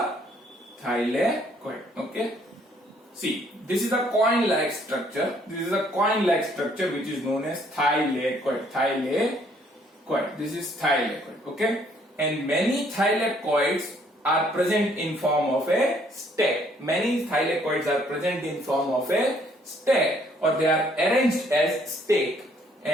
thylakoid. Okay. See, this is a coin-like structure. Which is known as thylakoid. This is thylakoid. Okay. And many thylakoids are present in form of a stack. Or they are arranged as stake.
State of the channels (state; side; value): normal; both; correlation 0.65